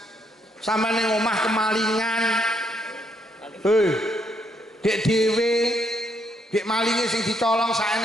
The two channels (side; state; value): both; normal; correlation 0.74